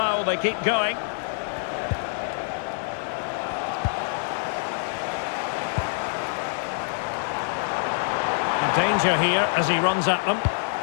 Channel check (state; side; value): silent; right; digital silence